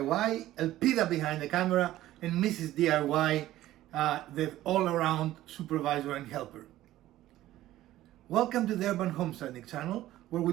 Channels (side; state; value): left; quieter; 14.7 dB